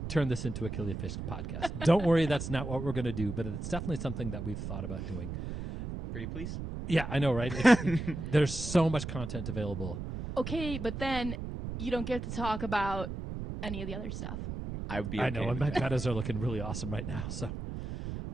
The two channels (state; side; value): noise; right; rumble, 6 dB below the sound